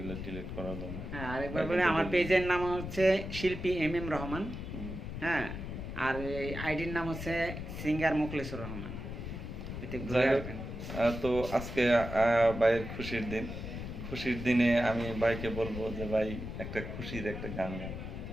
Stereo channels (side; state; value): left; noise; rumble, 7 dB below the sound